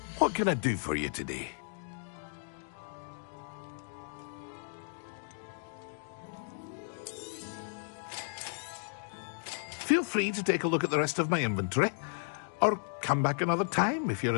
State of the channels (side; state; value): right; silent; digital silence